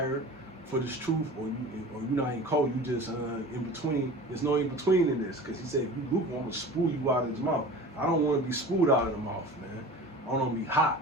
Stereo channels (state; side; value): normal; both; correlation 0.37